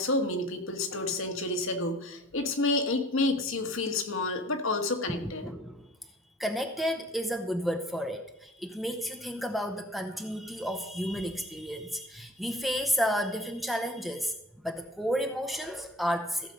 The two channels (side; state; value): both; normal; correlation 0.46